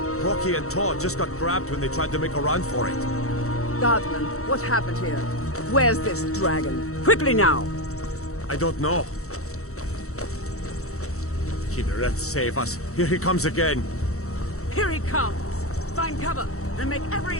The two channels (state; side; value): late; right; 0.64 ms